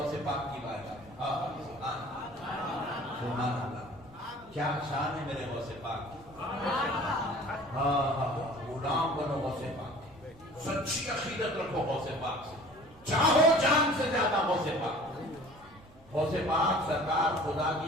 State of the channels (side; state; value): right; noise; rumble, 25 dB below the sound